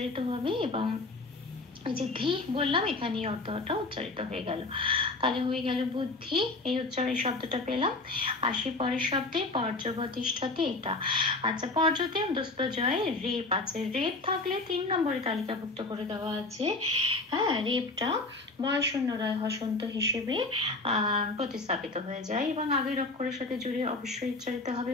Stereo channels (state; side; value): quieter; right; 3.3 dB